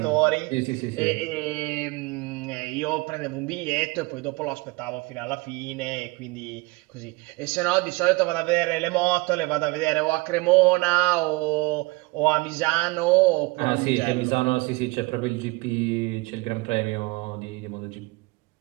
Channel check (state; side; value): quieter; left; 24.4 dB